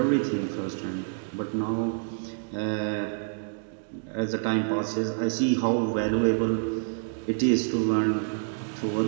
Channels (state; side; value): silent; left; digital silence